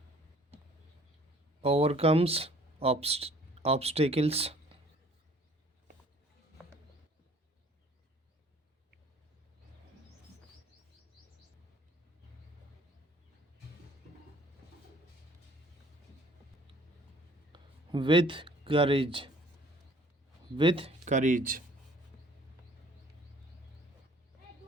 Overcomes obstacles. With courage. With courage.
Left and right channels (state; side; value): normal; both; correlation 0.55